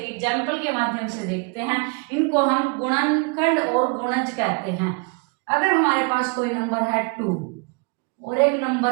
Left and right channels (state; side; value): quieter; left; 32.7 dB